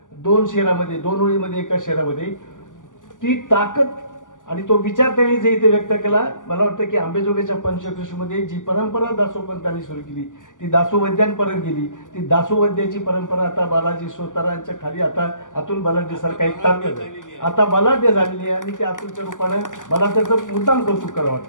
2 शेरामध्ये, 2 ओळीमध्ये, एका शेरामध्ये, ती ताकद आणि तो विचार त्यांनी जे इथे व्यक्त केला. मला वाटतं की आंबेजोगाईच्या पंचकृषीमध्ये जी परंपरा दासोपंतांनी सुरू केली ती दासोवैद्यांपर्यंत गेली. ती दासोवैद्याची परंपरा आता बालाजी सोतारांच्या खाली आता अतुल बलाढ्य सारखा एक ताकद आता बलाढ्य झालेली आहे आणि त्या अतुलच्या रूपाने मला त्याचं मुद्दाम कौतुक करावं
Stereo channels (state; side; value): late; right; 0.87 ms